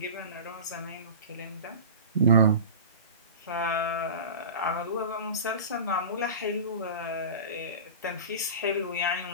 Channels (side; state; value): both; inverted; correlation -0.33